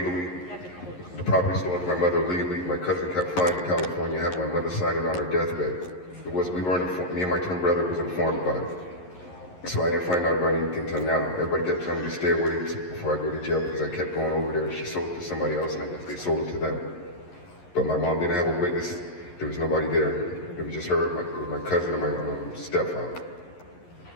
The property was stolen from my mother illegally. My cousin kept flying to California, having my mother sign it on her deathbed. We weren't informed, me and my twin brother was informed about it. So I didn't find out about anything until now. Everybody kept telling me to stay away before I go to jail because I kept going over there. She sold it to somebody else and I guess they sold it to them. But my mom didn't have a witness. There was nobody there. It was just her, my cousin, and my stepfather.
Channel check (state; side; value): late; right; 11 ms